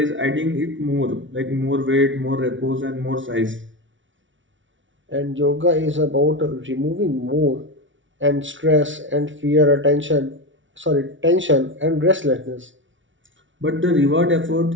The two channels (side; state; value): left; late; 0.56 ms